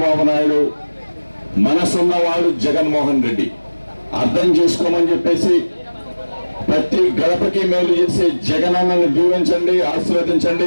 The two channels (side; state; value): both; inverted; correlation -1.00